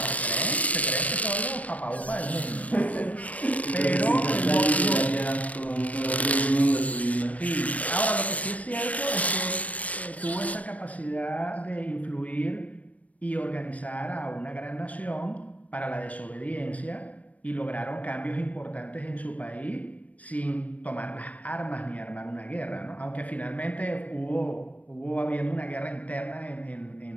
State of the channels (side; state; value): right; late; 0.068 ms